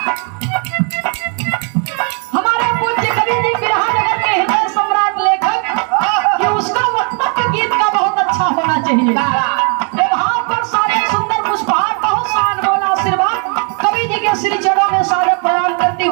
हमारे पूज्य कवि जी बिरहा नगर के हृदय सम्राट लेखक कि उसका वक्तव्य गीत का बहुत अच्छा होना चाहिए। भाव पर सारे सुंदर पुष्पहार, बहुत सा अनमोल आशीर्वाद कवि जी के श्री चरणों में सारे प्रणाम करती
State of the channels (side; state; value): left; quieter; 39.6 dB